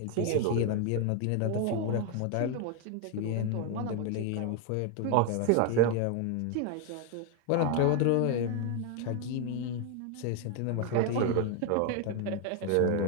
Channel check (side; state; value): both; different; correlation 0.01